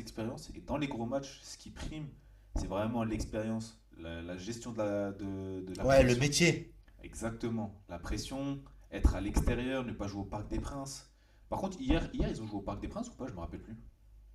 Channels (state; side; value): identical; both; correlation 1.00